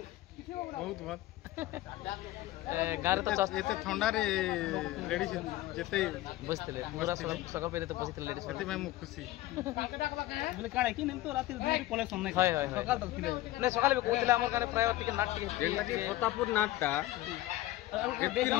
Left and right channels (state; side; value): quieter; right; 16.4 dB